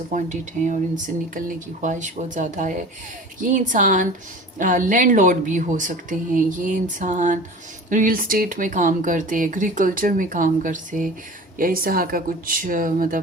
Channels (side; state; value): both; normal; correlation 0.38